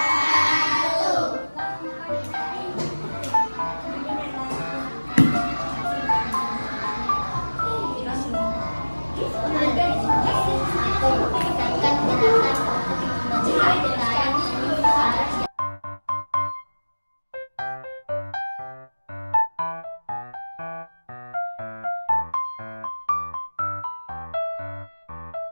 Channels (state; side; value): inverted; both; correlation -1.00